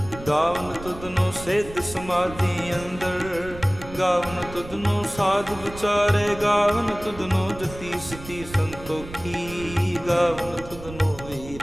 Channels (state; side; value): noise; right; rumble, 14 dB below the sound